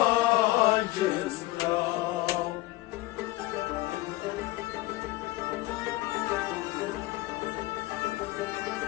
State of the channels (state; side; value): quieter; right; 18.9 dB